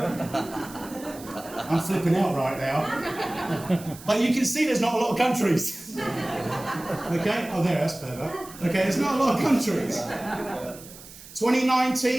I'm flipping out right now. But you can see there's not a lot of countries. Okay? Oh, there, that's better. Okay, there's not a lot of countries.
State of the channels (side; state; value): right; noise; hiss, 18 dB below the sound